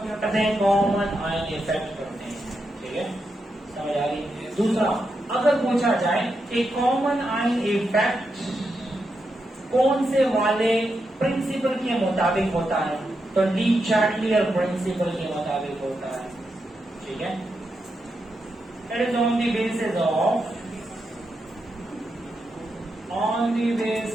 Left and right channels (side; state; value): both; normal; correlation 0.85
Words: करते हैं, कॉमन आयन इफेक्ट करते हैं। ठीक है, समझ आ रही। दूसरा, अगर पूछा जाए कि कॉमन आयन इफेक्ट कौन से वाले प्रिंसिपल के मुताबिक होता है, तो डी चार्टलियर प्रिंसिपल के मुताबिक होता है। ठीक है, it is on the basis of